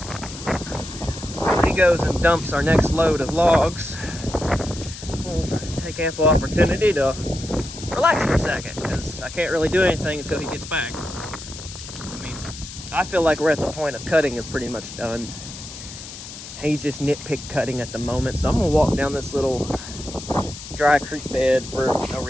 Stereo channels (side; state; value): left; noise; hiss, 12 dB below the sound